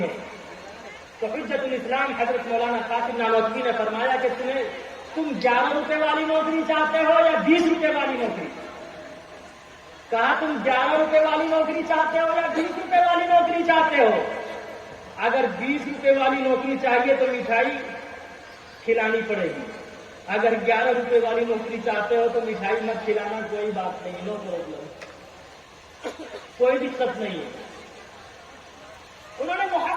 ہے. تو حجت الاسلام حضرت مولانا قاسم نانوتوی نے فرمایا کہ تم 11 روپے والی نوکری چاہتے ہو یا 20 روپے والی نوکری؟ کہا تم 11 روپے والی نوکری چاہتے ہو یا 20 روپے والی نوکری چاہتے ہو؟ اگر 20 روپے والی نوکری چاہیے تو مٹھائی کھلانی پڑے گی, اگر 11 روپے والی نوکری چاہتے ہو تو مٹھائی مت کھلانا, کوئی بات نہیں, نو پرابلم, کوئی دقت نہیں ہے. انہوں نے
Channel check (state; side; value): identical; both; correlation 1.00